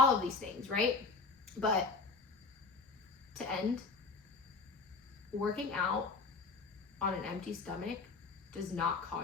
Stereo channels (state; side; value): quieter; right; 4.2 dB